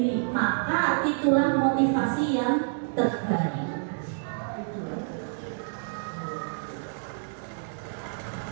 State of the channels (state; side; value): silent; left; digital silence